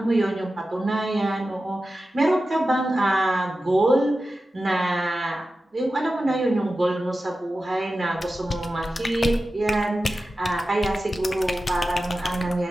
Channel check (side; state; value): both; normal; correlation 0.93